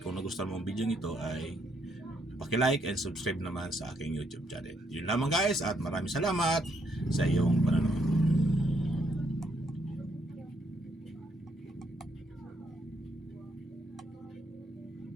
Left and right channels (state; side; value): normal; both; correlation 0.74